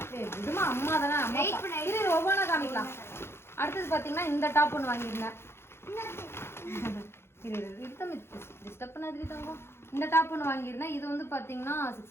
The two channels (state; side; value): late; right; 0.12 ms